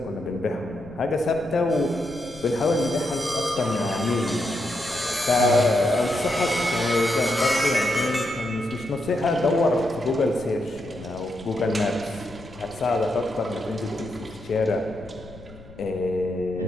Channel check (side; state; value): left; noise; rumble, 19 dB below the sound